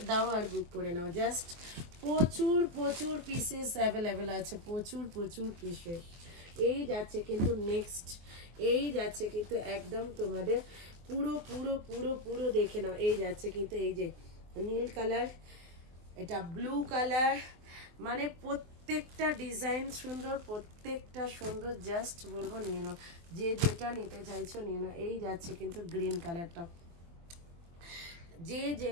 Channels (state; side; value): late; left; 23 ms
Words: দাও আর বুক করে নাও। জাস্ট প্রচুর প্রচুর পিসেস অ্যাভেলেবেল আছে, প্রচুর প্রচুর পিসেস। এই যাচ্ছে কিন্তু নেক্সট, এই যাচ্ছে কিন্তু একদম তোমাদের পুরো পুরো পুরো পুরো দেখে নাও। এই যাচ্ছে কিন্তু এই যে নীল কালার, এটা ব্লু কালার, মানে প্রত্যেকটা ডিজাইন সুন্দর, প্রত্যেকটা সুন্দর। জাস্ট বলবো নিয়ে নাও, যে যেটা নিতে চাইছো নিয়ে নাও। এই যাচ্ছে কিন্তু গ্রিন কালারটা, যে